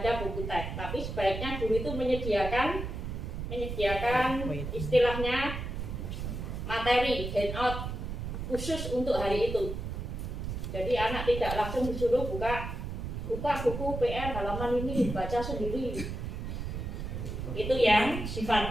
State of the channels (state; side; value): noise; right; rumble, 5 dB below the sound